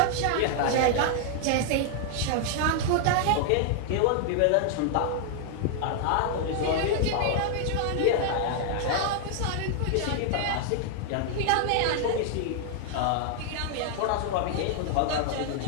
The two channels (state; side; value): different; both; correlation 0.00